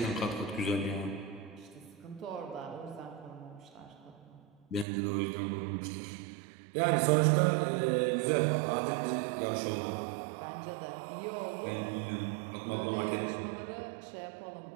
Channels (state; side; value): drops out; left; at 4.9 s